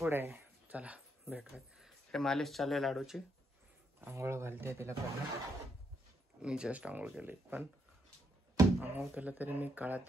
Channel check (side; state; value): both; normal; correlation 0.77